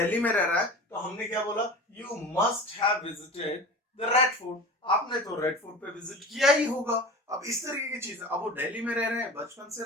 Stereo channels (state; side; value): normal; both; correlation 0.35